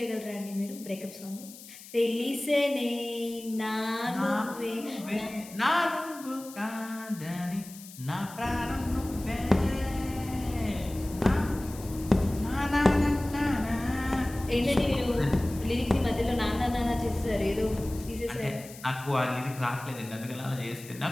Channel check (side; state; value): left; noise; hiss, 17 dB below the sound